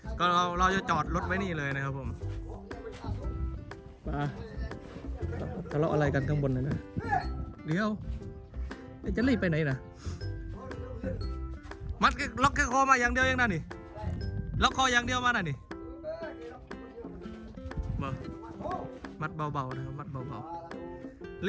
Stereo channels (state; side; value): identical; both; correlation 1.00